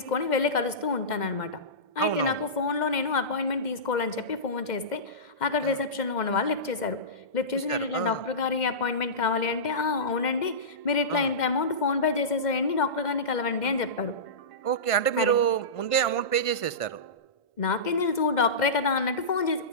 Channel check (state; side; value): late; right; 2.1 ms